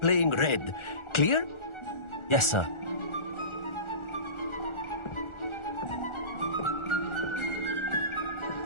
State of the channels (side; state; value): right; late; 1.4 ms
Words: red. Clear? Yes, sir.